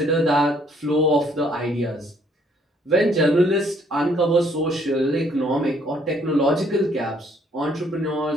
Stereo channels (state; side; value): normal; both; correlation 0.65